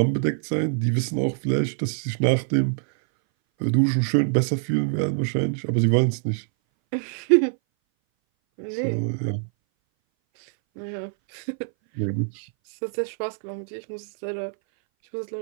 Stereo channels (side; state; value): left; silent; 60 dB below the other